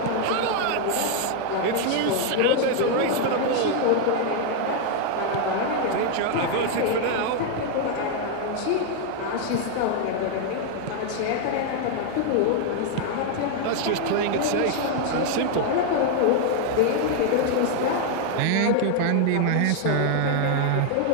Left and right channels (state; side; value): different; both; correlation 0.00